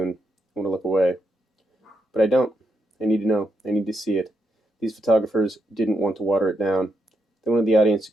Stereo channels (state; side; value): normal; both; correlation 0.81